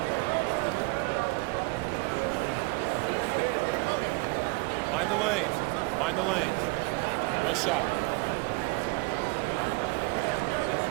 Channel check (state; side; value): quieter; left; 26.2 dB